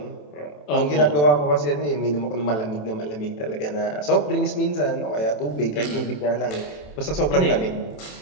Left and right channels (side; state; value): right; late; 27 ms